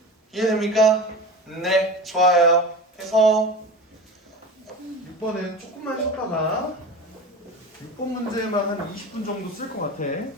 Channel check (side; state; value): both; normal; correlation 0.31